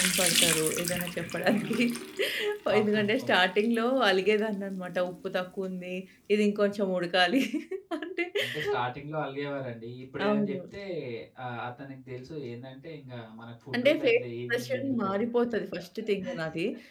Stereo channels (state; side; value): identical; both; correlation 1.00